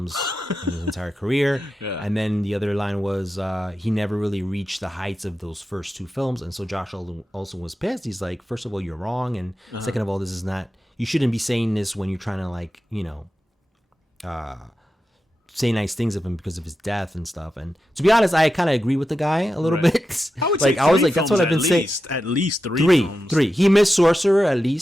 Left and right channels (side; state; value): both; normal; correlation 0.90